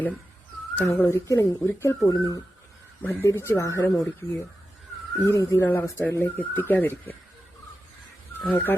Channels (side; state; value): both; normal; correlation 0.91